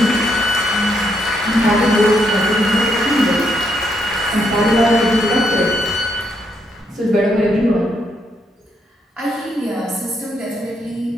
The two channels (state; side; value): normal; both; correlation 0.76